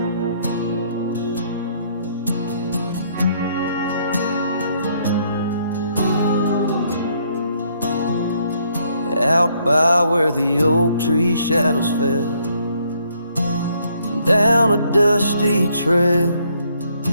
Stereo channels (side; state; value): both; inverted; correlation -0.69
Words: out by where the oak tree shadows fell, down a dusty trail